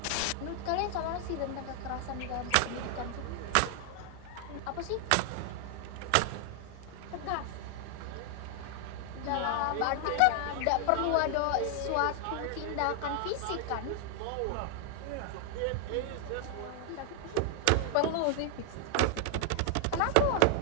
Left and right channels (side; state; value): both; different; correlation 0.00